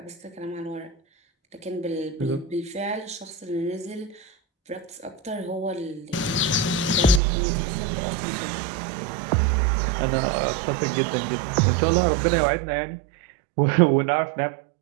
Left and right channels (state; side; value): drops out; left; at 7.2 s